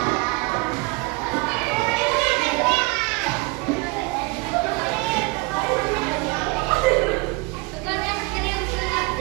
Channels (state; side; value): quieter; left; 27.3 dB